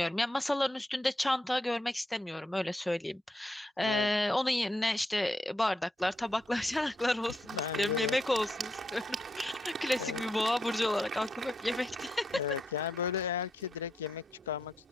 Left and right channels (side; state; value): both; normal; correlation 0.81